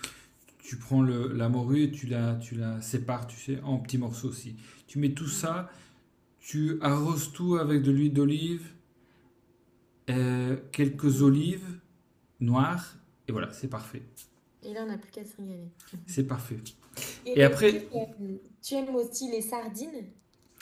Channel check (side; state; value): both; identical; correlation 1.00